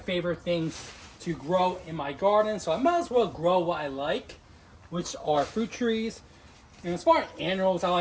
things to grow in my garden. So I might as well grow what I like, which are fruit trees. And as far as annuals, I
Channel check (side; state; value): both; identical; correlation 1.00